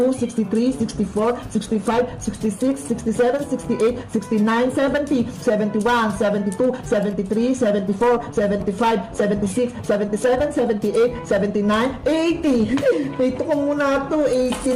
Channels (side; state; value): both; identical; correlation 1.00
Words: 63, 64, 65, 66, 67, 68, 69, 70, 71, 72, 73, 74, 75, 76, 77, 78, 79, 80. Ito ko muna to.